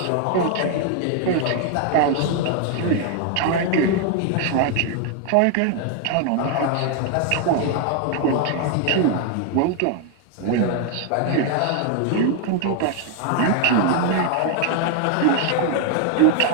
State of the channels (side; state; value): both; different; correlation 0.00